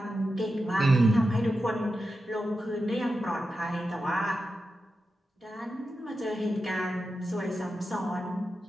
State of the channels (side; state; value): both; normal; correlation 0.90